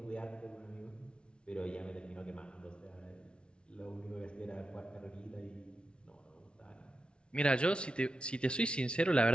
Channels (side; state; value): right; late; 0.057 ms